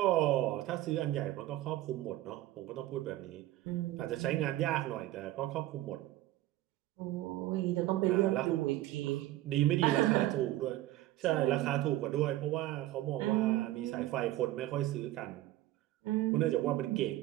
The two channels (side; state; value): left; quieter; 15.6 dB